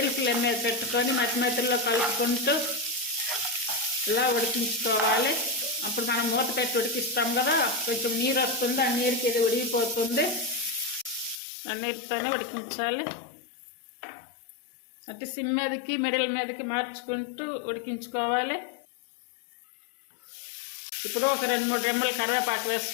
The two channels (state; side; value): drops out; right; at 11.4 s